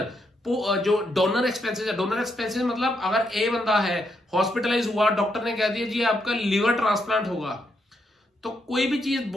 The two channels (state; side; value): normal; both; correlation 0.79